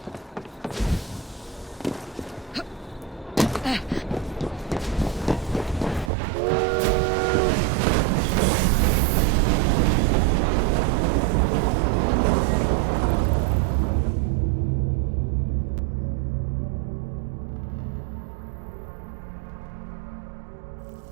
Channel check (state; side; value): drops out; left; at 6.1 s